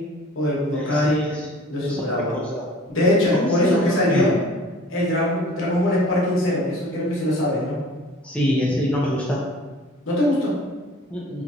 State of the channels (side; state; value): both; normal; correlation 0.47